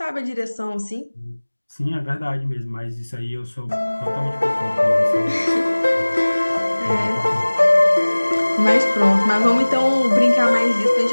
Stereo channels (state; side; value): inverted; both; correlation -1.00